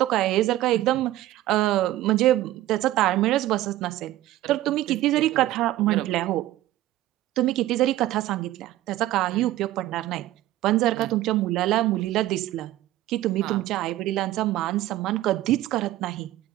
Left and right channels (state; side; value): quieter; left; 15.1 dB